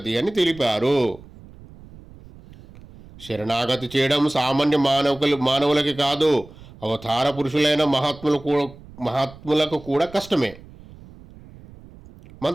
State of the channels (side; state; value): right; noise; rumble, 20 dB below the sound